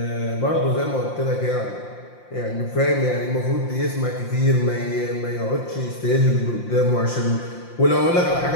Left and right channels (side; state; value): right; late; 5.7 ms